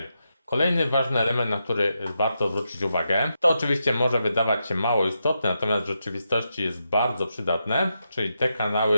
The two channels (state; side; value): inverted; both; correlation -0.85